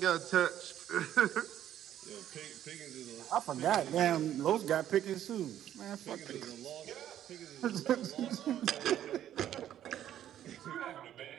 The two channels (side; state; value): left; quieter; 11.3 dB